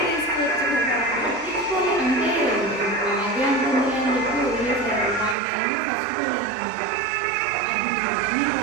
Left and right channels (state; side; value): drops out; left; at 5.4 s